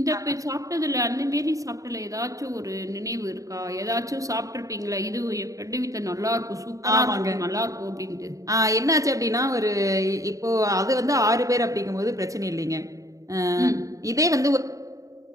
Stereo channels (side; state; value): left; late; 0.16 ms